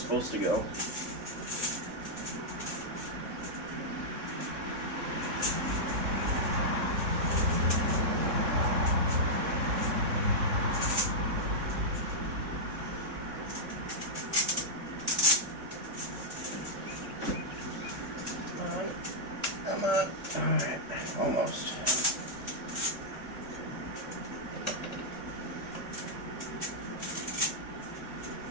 to go. Alright, almost.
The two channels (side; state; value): left; late; 3.7 ms